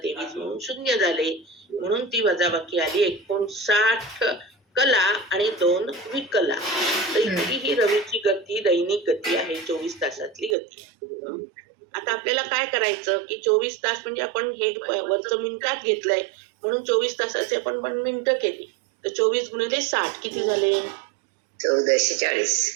23 म्हणून 0 झाले म्हणून ती वजाबाकी आली 59 कला आणि 2 विकला. तर इतकी ही रवीची गती दैनिक गती आहे 24 तासातली गती. आता आपल्याला काय करायचं की 24 तास म्हणजे आपण हे वरचं मिनिटात घेतलंय म्हणून 24 तासाचे आपण मिनिटं केली तर 24 गुणिले 60 किती झाले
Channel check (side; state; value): left; drops out; at 10.6 s